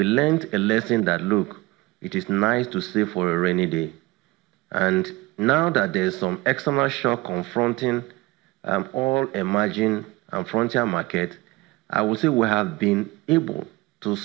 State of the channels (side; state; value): left; quieter; 21.1 dB